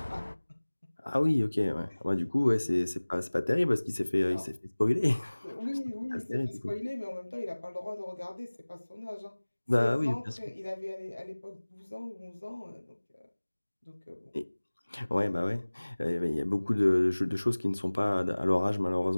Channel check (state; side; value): inverted; both; correlation -1.00